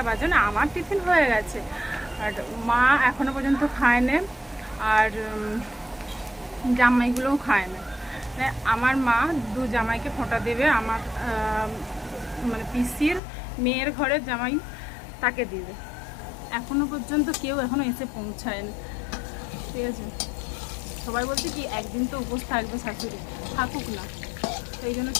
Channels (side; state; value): right; drops out; at 13.2 s